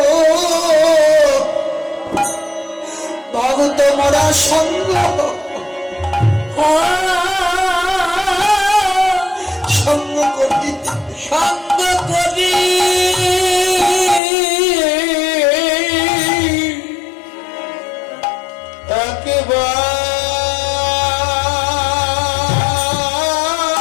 ভগত মোরা সঙ্গ সঙ্গ করি, সঙ্গ করি একেবারে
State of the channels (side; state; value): right; drops out; at 14.2 s